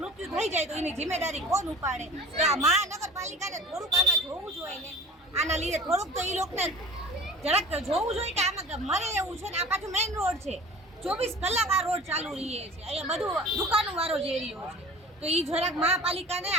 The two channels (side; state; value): both; normal; correlation 0.42